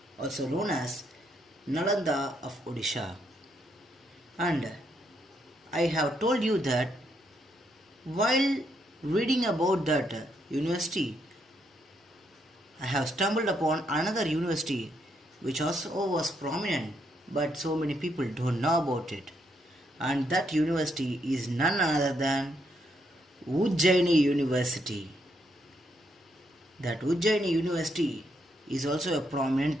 also known as Nalanda of Odisha. And I have told you that while reading about that university, I have stumbled upon another university which also was prominent, but so many people don't know about it. And that university is none other than Ujjaini University. That Ujjaini University is also a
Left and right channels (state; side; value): normal; both; correlation 0.76